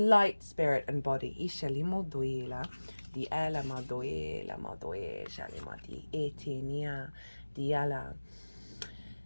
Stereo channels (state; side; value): inverted; both; correlation -1.00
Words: spirit, and body.